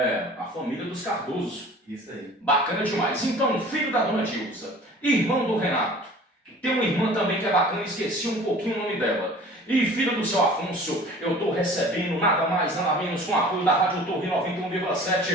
a família dos Cardoso. Isso aí. Bacana demais. Então, filho da dona Dilza, irmão do Renato. Tem uma irmã também que é bacana, esqueci um pouquinho o nome dela. E filho do seu Afonso, eu estou recebendo nada mais, nada menos, com o apoio da Rádio Torre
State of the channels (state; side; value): normal; both; correlation 0.45